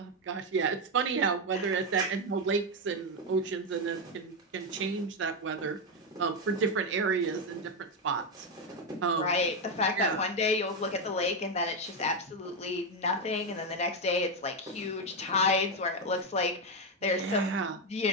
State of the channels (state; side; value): normal; both; correlation 0.07